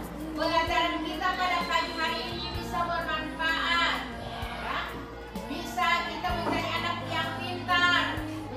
pelajaran kita pada pagi hari ini bisa bermanfaat ya. Bisa kita menjadi anak yang pintar,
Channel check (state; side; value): identical; both; correlation 1.00